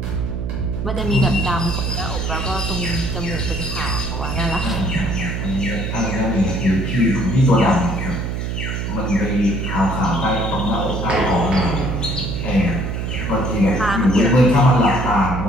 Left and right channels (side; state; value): right; noise; hum, 3 dB below the sound